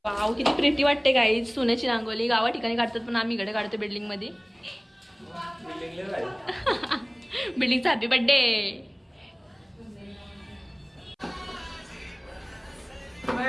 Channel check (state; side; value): identical; both; correlation 1.00